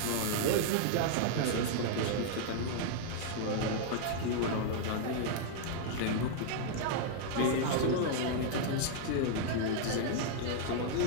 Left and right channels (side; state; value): both; different; correlation 0.00